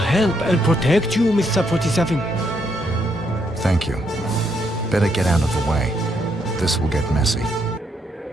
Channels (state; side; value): normal; both; correlation 0.75